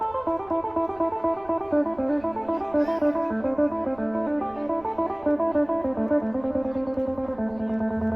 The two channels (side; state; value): right; noise; rumble, 23 dB below the sound